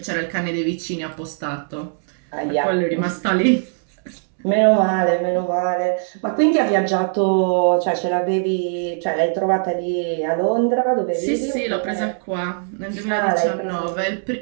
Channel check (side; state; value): left; silent; digital silence